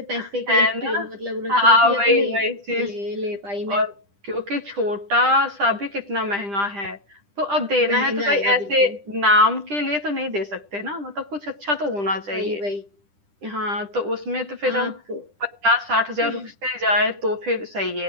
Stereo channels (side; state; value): left; late; 10 ms